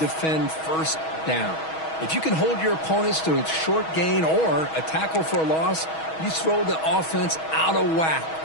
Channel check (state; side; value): late; right; 6.3 ms